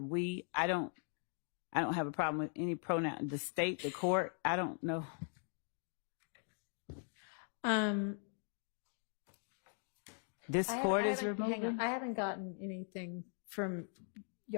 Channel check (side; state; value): right; silent; 51 dB below the other